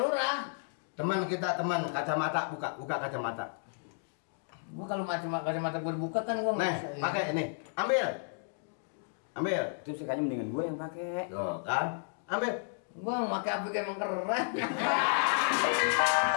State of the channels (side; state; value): right; silent; digital silence